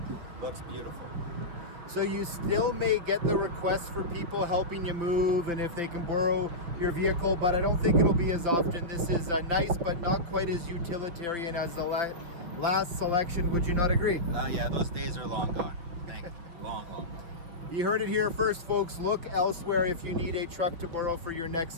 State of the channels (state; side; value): late; left; 5.7 ms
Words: Looks beautiful. So you still may get the requests for people helping you move and if they can borrow your vehicle, but I don't think it'll be as often. This is nice, but not quite as utilitarian as the last selection. Would you not agree? Yeah, those days are long gone. Thank you. Long gone. You heard it here first, folks. Look elsewhere if you need a truck to borrow for your